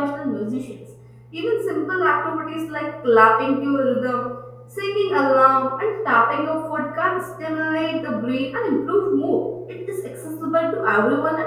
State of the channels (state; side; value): identical; both; correlation 1.00